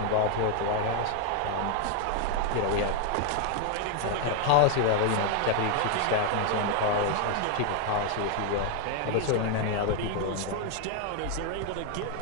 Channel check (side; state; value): both; different; correlation 0.01